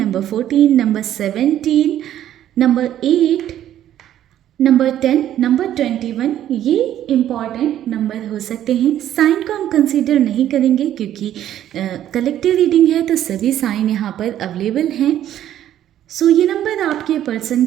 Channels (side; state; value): left; quieter; 11.6 dB